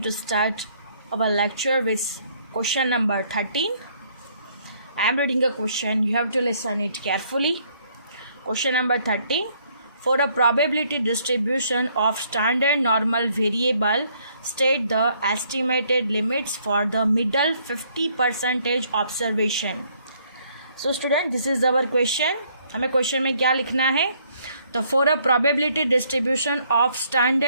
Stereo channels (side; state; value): both; inverted; correlation -0.66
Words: to start our lecture with question number 13. I am reading a question, you have to listen it carefully. Question number 13. For a probability distribution of standard normal variable, state the estimated limits for the middle 50% observation. So student, this is our question. हमें क्वेश्चन में क्या लिखना है? तो for a probability distribution of